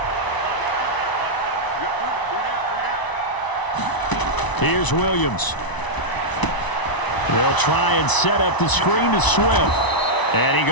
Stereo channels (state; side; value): late; right; 1.0 ms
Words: Here's Williams. They'll try and set up the screen to Swift. And he